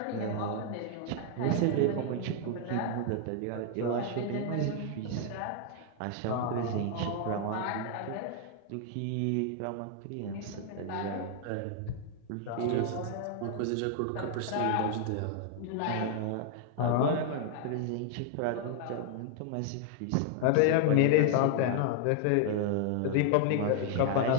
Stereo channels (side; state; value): both; different; correlation 0.00